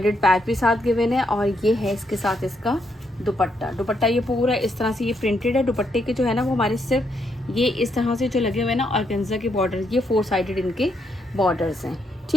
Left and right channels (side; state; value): both; normal; correlation 0.77